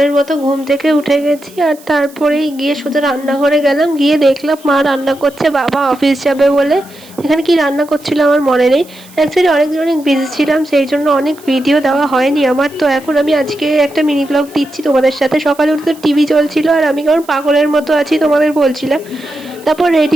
মতো ঘুম থেকে উঠে গেছি, আর তারপরেই গিয়ে সোজা রান্নাঘরে গেলাম। গিয়ে দেখলাম মা রান্না করছে, বাবা অফিস যাবে বলে। এখানে কি রান্না করছিল আমার মনে নেই। অ্যাকচুয়ালি অনেক বিজি ছিলাম, সেই জন্য অনেক ভিডিও দেওয়া হয়নি আমার। তো এখন আমি আজকে একটা মিনি ব্লগ দিচ্ছি তোমাদের সাথে। সকালে উঠে তো টিভি চলছিল আর আমি কেমন পাগলের মতো আছি তোমাদের বলছিলাম। তারপর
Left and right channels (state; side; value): noise; right; hiss, 24 dB below the sound